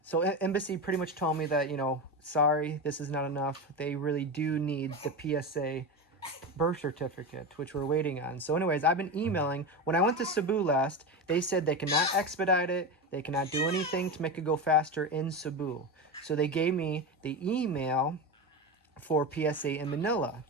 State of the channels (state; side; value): normal; both; correlation 0.20